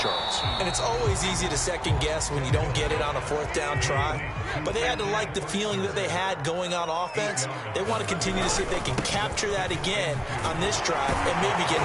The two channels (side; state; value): both; identical; correlation 1.00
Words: Charles. And it's always easy to second guess when you don't get it on a 4th down try. But they had to like the feeling that they had going on offense. They want to continue to see if they can capture that again on this drive and maybe get in